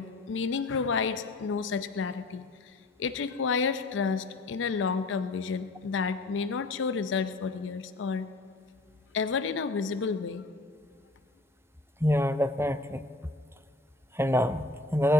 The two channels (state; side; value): quieter; right; 3.1 dB